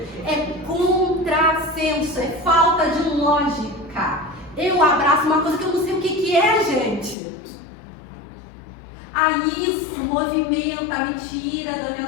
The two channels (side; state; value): right; drops out; at 7.2 s